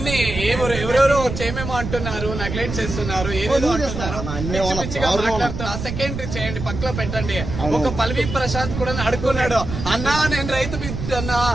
ఎవరెవరో చేయమేమో అంటున్నారు, నెగ్లెక్ట్ చేస్తున్నారు, ఏదేదో అంటున్నారు, పిచ్చిగా మాట్లాడుతున్నారు. ఆ సెకండరీ చేయండి, పక్కలో పెట్టండి. ఒక పల్వి ప్రశాంత్ కూడా అడుకున్నాడు, అన్నా నేను రైతు బిడ్డన్నా,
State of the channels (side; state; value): right; noise; rumble, 6 dB below the sound